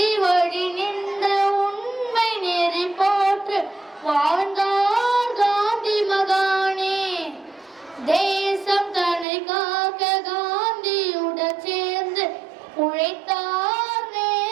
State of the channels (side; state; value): left; drops out; at 9.2 s